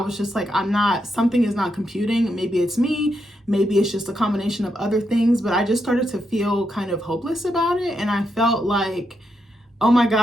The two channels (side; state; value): both; normal; correlation 0.82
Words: just like, something is not computing. Maybe it's me. Maybe it's just a combination of other things, but I just started to feel kind of hopeless about it. And I felt like, oh my